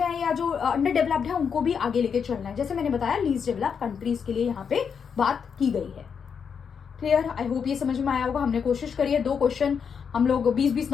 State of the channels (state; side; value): quieter; right; 6.7 dB